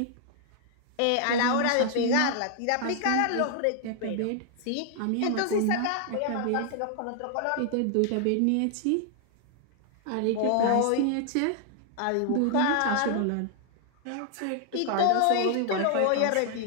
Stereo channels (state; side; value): different; both; correlation -0.01